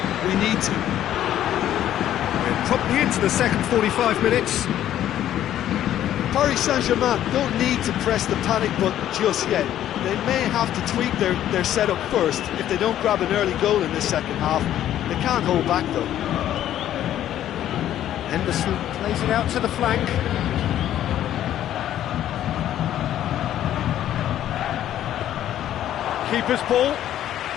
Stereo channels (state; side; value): quieter; right; 11.8 dB